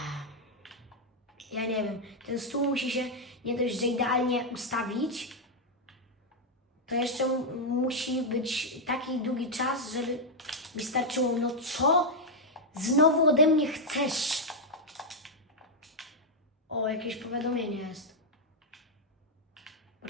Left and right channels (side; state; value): both; normal; correlation -0.01